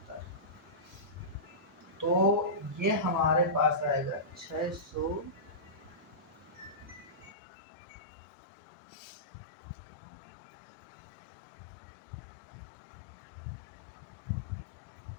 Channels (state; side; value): drops out; right; at 7.3 s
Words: तो ये हमारे पास आएगा 600,